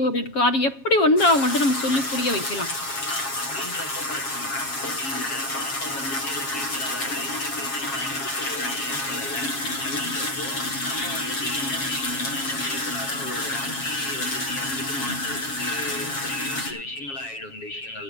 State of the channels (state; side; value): late; right; 7.3 ms